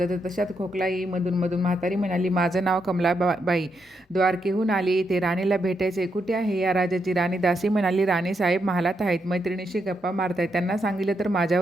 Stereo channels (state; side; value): normal; both; correlation 0.81